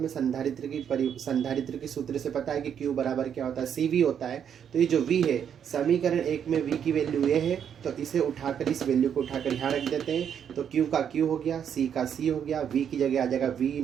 संधारित्र की सूत्र से पता है कि Q बराबर क्या होता है, CV होता है। तो ये जो V है, समीकरण 1 में V की वैल्यू ये है, तो इसे उठाकर, इस वैल्यू को उठाकर यहाँ रख देते हैं। तो Q का Q हो गया, C का C हो गया, V की जगह आ जाएगा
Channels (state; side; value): quieter; left; 8.4 dB